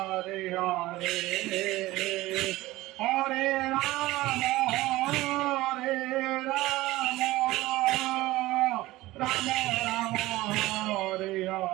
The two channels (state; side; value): quieter; left; 18.1 dB